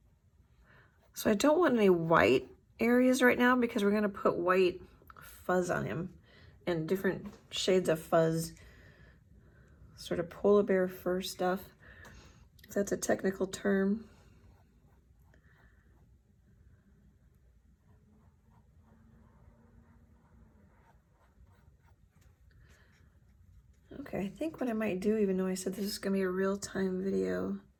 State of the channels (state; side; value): identical; both; correlation 1.00